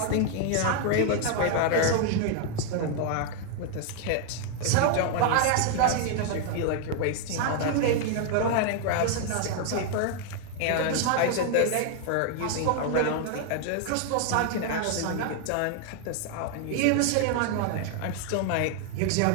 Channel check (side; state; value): both; different; correlation 0.00